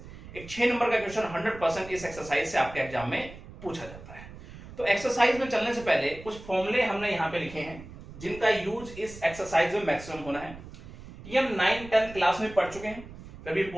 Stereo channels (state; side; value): noise; right; rumble, 16 dB below the sound